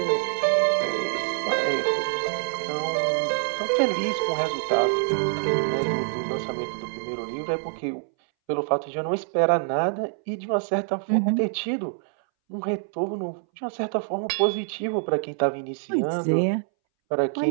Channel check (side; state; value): left; silent; 61 dB below the other